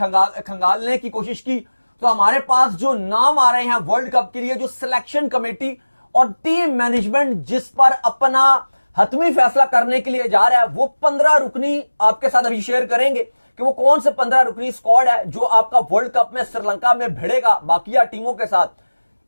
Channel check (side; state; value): both; inverted; correlation -1.00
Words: की कोशिश की, तो हमारे पास जो नाम आ रहे हैं वर्ल्ड कप के लिए, जो सिलेक्शन कमेटी और टीम मैनेजमेंट जिस पर अपना हतमी फैसला करने के लिए जा रहा है, वो 15 रुकनी आपके साथ अभी शेयर करेंगे कि वो कौन से 15 रुकनी स्क्वाड है जो आपका वर्ल्ड कप में श्रीलंका में भिड़ेगा बाकिया टीमों के साथ।